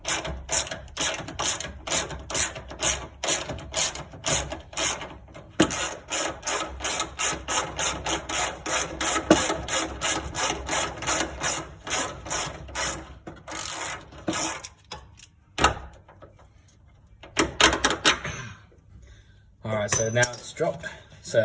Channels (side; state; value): both; identical; correlation 1.00